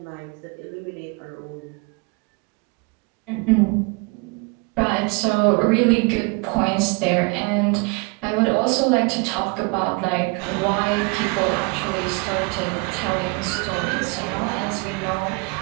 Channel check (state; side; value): quieter; left; 30.1 dB